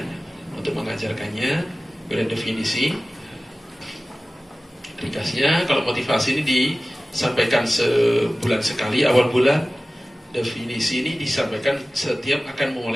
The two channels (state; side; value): normal; both; correlation 0.97